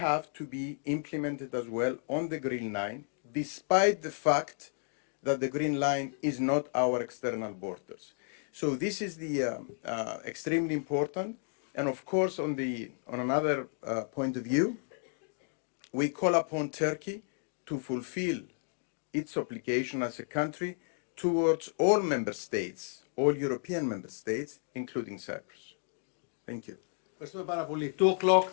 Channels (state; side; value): silent; right; 56 dB below the other